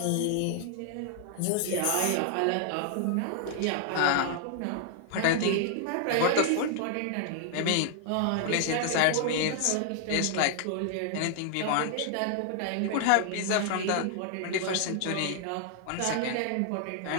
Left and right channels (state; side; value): different; both; correlation 0.00